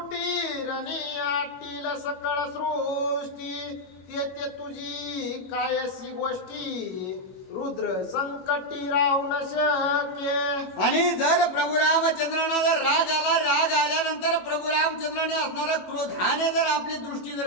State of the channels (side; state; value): right; late; 21 ms